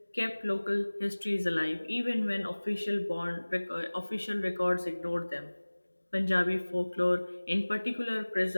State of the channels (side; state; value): both; inverted; correlation -1.00